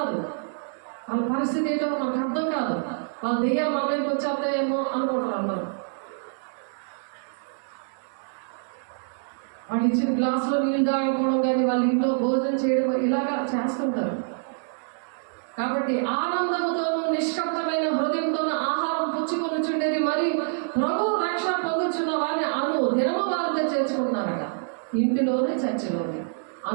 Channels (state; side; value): silent; left; digital silence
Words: వాళ్ళ పరిస్థితి ఏంటో మనకు అర్థం కాదు. వాళ్ళ దయ్యాలు మన మీదకి వచ్చేస్తాయేమో అనుకుంటారు అందరూ. వాళ్ళు ఇచ్చిన గ్లాసులో నీళ్ళు తాగకపోవడం కానీ, వాళ్ళ ఇంట్లో భోజనం చేయడం ఇలాగా చేస్తుంటారు. కాబట్టి ఆనందముతోనూ నిష్కప్తమైన హృదయంతోనూ ఆహారం పుచ్చుకొనుచుండేది, మరి ప్రభు రక్షణ పొందుచున్న వారిని దినము వారితో చేర్చుకుంటున్నారట. ఇంటిలోనే చర్చిలోనే